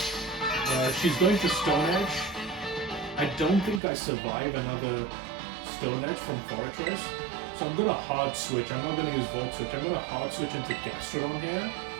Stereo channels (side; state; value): left; drops out; at 3.8 s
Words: She's going to Stone Edge. I don't think I survive another Stone Edge from Fortress, so I'm going to hard switch. I'm not going to use Volt Switch. I'm going to hard switch into Gastrodon here